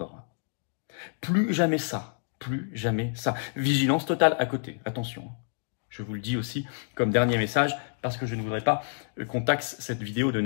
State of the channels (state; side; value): silent; right; digital silence